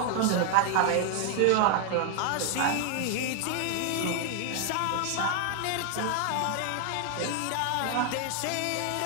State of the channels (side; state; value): both; different; correlation 0.00